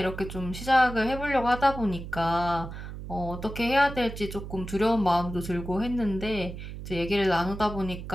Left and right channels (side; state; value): right; noise; hum, 10 dB below the sound